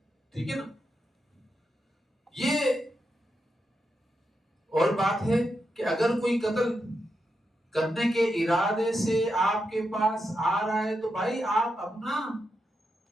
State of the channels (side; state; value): both; normal; correlation 0.85